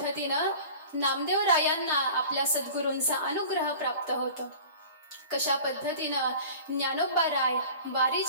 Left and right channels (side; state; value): both; inverted; correlation -0.41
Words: नामदेव रायांना आपल्या सद्गुरूंचा अनुग्रह प्राप्त होतो, कशा पद्धतीनं ज्ञानोबा राय